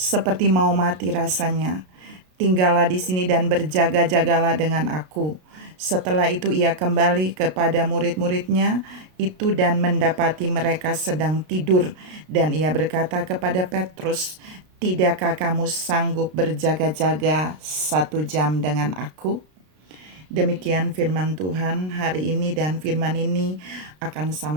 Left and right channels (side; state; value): left; late; 33 ms